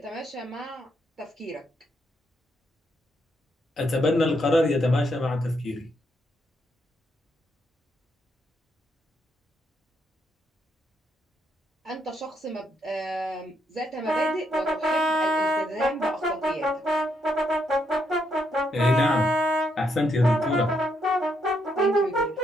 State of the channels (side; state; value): both; normal; correlation 0.77